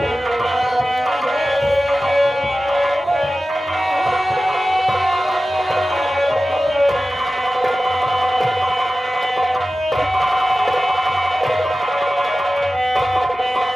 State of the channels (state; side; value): normal; both; correlation 0.95